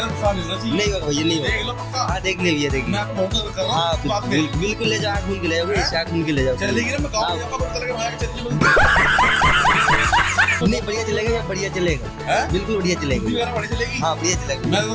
नहीं होना चाहिए। नहीं होगा भैया, नहीं होगा। देख लो पक्का। हाँ देख ले भैया, देख मैं आपको बहुत कर रहा हूं। हाँ बिल्कुल ले जाओ, घूम के ले जाओ, घूम के ले जाओ। चलेगी ना? मैं गांव जाऊंगा, पता चलेगा भाई चलती नहीं बढ़िया चलेगा, बढ़िया चलेगा, बिल्कुल बढ़िया चलेगा। बढ़िया चलेगी। हाँ बढ़िया चलेगा। मैं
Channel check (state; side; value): identical; both; correlation 1.00